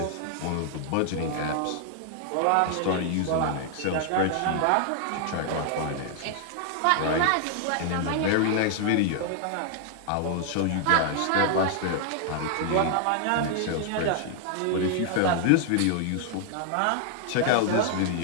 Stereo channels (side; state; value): both; different; correlation 0.00